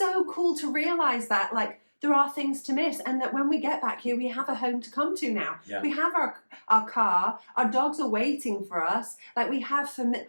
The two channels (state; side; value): inverted; both; correlation -1.00